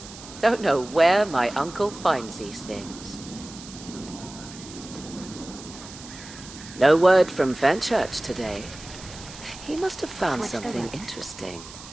Don't know where my uncle finds these things. No word from Fenchurch today. He must have found Switch the something routes. interesting.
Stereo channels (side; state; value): right; noise; hiss, 16 dB below the sound